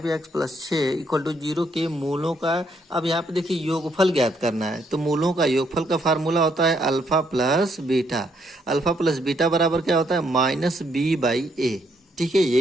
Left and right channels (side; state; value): both; normal; correlation 0.73